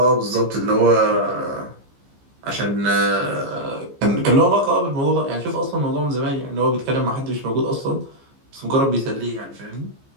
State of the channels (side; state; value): left; late; 15 ms